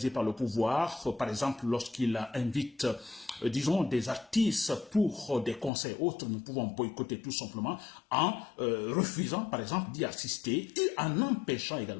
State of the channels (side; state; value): right; drops out; at 5.7 s